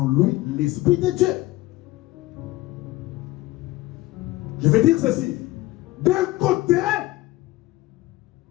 lui l'Esprit de Dieu? Je vais dire ceci. D'un côté,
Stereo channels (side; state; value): right; quieter; 18.5 dB